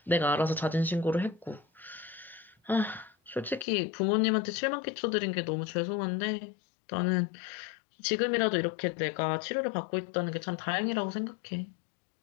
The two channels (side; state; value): right; drops out; at 3.7 s